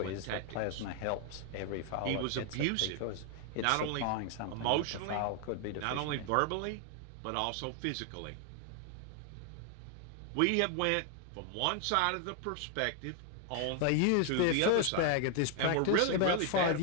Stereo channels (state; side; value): different; both; correlation 0.00